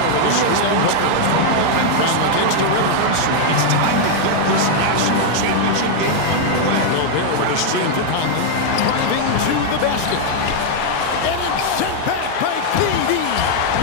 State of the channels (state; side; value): different; both; correlation 0.00